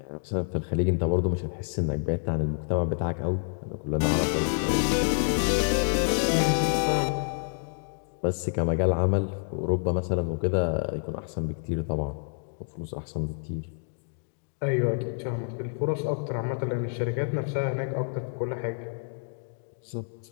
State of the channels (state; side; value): silent; right; digital silence